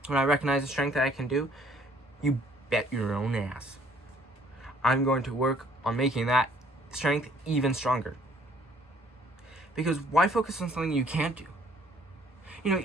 I recognize the strength that I can do, you bet your own ass I'm going to work on making that strength even stronger. Because why focus on something you can't do? You know,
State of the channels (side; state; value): both; normal; correlation 0.60